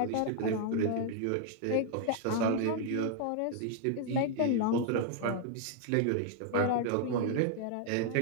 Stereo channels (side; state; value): both; different; correlation 0.00